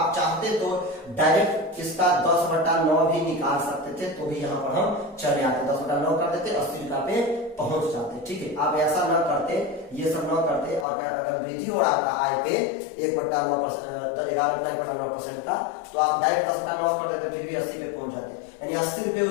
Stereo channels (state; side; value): drops out; right; at 10.9 s